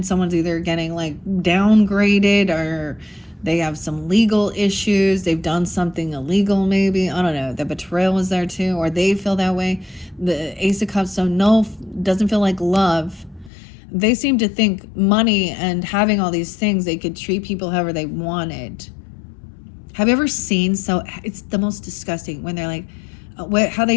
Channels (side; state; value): right; drops out; at 13.5 s